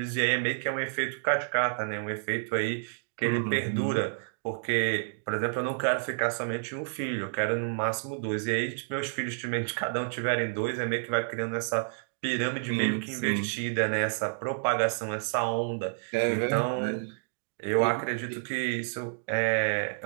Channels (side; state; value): left; silent; digital silence